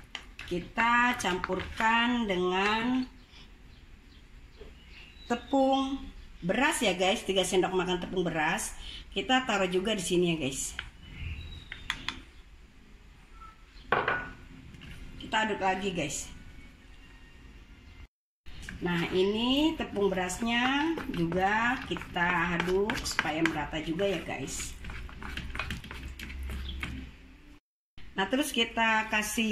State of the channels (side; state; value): both; identical; correlation 1.00